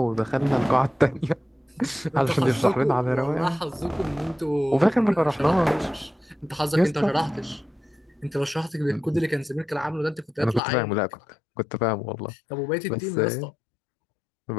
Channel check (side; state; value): right; drops out; at 10.6 s